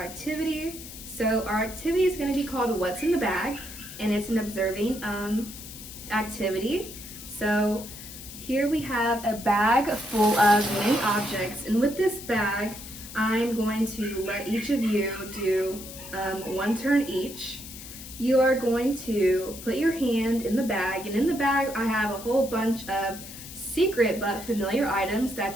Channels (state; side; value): noise; left; hiss, 13 dB below the sound